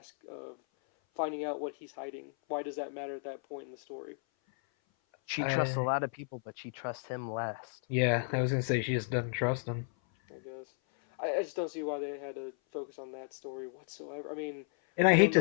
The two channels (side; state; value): right; silent; 55 dB below the other